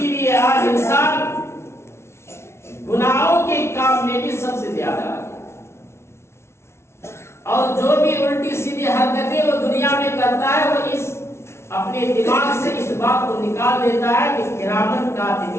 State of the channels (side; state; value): right; late; 0.13 ms